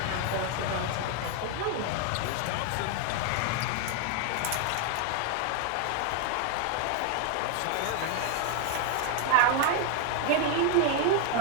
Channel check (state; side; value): different; both; correlation 0.00